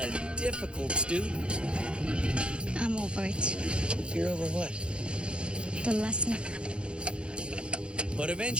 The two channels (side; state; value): left; late; 0.056 ms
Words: difficult student. I'm over it. You're over what? The lesson. But